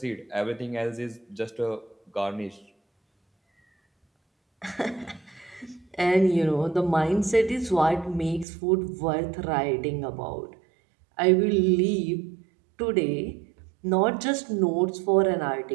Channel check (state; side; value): drops out; left; at 8.5 s